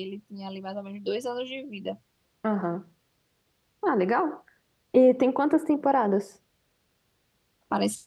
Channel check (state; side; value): identical; both; correlation 1.00